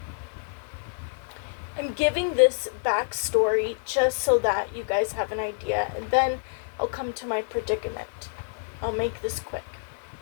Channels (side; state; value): right; silent; 60 dB below the other